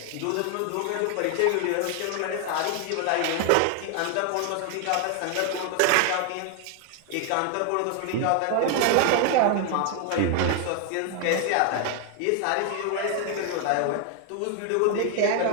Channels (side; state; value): both; different; correlation 0.01